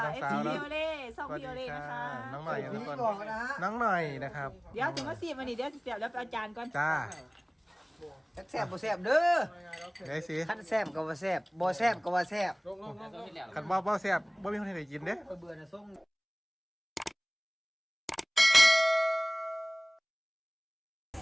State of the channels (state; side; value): identical; both; correlation 1.00